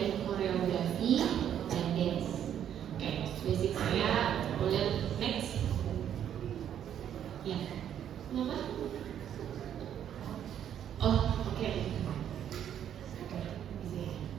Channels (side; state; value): left; quieter; 9.8 dB